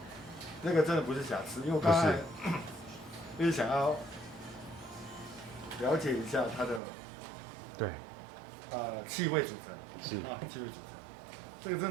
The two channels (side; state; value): left; drops out; at 6.8 s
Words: 那个真的不是瑕疵，因为我刚才就是想要了解一下它的对气味组成，是气味组成，这个